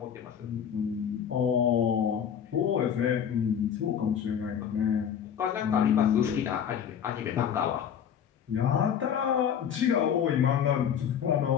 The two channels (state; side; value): quieter; right; 8.5 dB